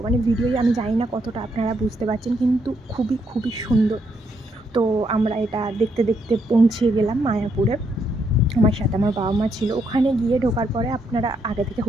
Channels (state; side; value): normal; both; correlation 0.76